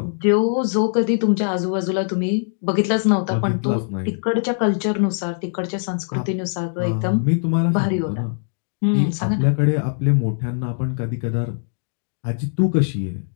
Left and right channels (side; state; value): right; silent; digital silence